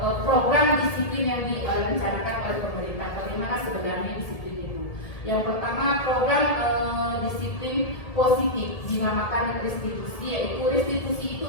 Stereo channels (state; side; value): late; right; 1.7 ms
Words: program disiplin yang direncanakan oleh pemerintah. Bagaimana sebenarnya disiplin itu? Yang pertama, program disiplin positif dinamakan restitusi, yaitu restitusi